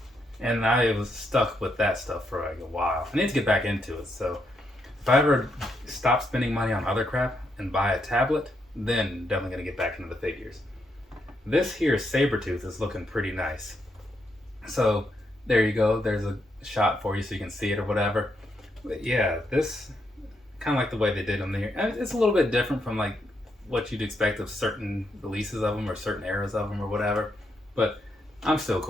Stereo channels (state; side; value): normal; both; correlation 0.79